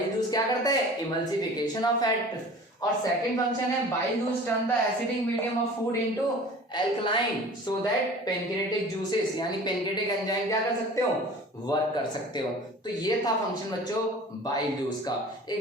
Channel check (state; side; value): normal; both; correlation 0.43